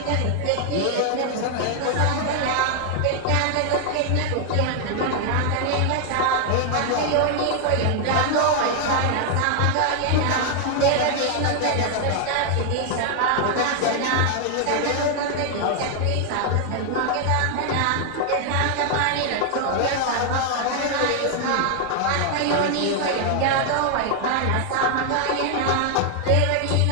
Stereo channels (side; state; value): both; different; correlation 0.00